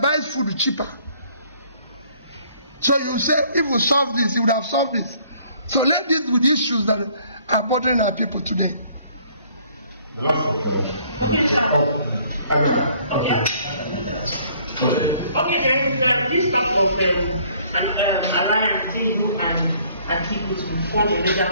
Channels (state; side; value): inverted; both; correlation -0.60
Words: buys food cheaper? So you say if we solve this, it would have solved this. So let's deal with issues that are bothering our people today. The last Okay, sir. Okay, then this talk of an alliance Tinubu and people to form a legal